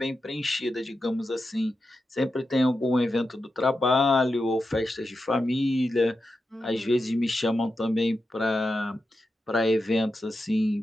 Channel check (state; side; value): normal; both; correlation 0.89